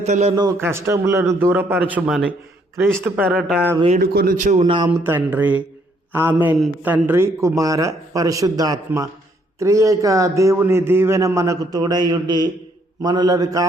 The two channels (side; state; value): both; normal; correlation 0.69